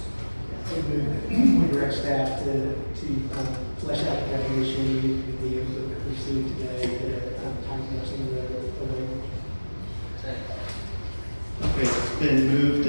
We direct staff to flesh out the definition, the input that we see today, time lapsing the language. Okay, it's been moved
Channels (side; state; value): both; inverted; correlation -1.00